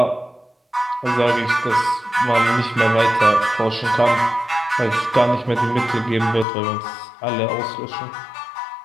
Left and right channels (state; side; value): drops out; right; at 6.5 s